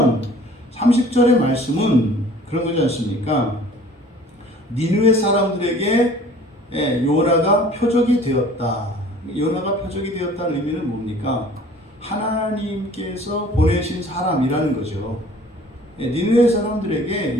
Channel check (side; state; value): both; normal; correlation 0.50